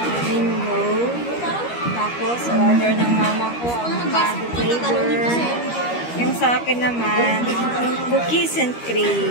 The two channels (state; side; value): late; right; 13 ms